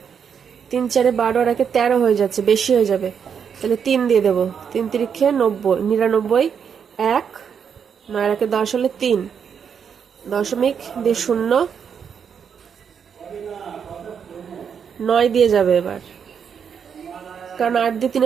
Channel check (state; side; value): quieter; left; 7.2 dB